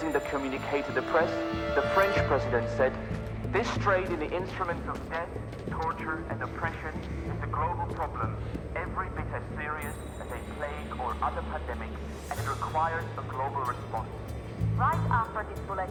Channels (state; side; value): identical; both; correlation 1.00